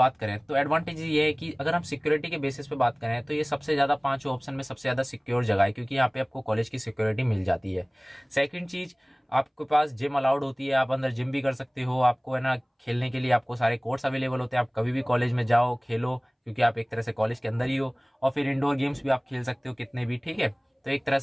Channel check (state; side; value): identical; both; correlation 1.00